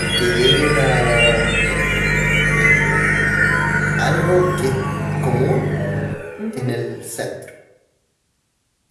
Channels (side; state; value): both; identical; correlation 1.00